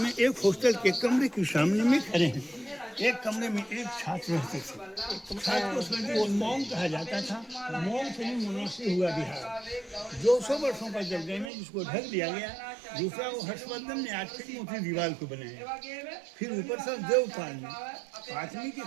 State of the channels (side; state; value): left; drops out; at 11.5 s